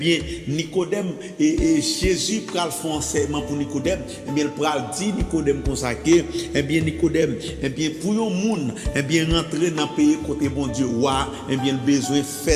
Nicodème et Jésus pral faire enseignement pour Nicodème. Eh bien, il pral dire Nicodème consacré. Eh bien, Nicodème, eh bien, pour un monde, eh bien, rentrer dans le pays côté bon Dieu, ouais, eh bien, le besoin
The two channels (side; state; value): both; identical; correlation 1.00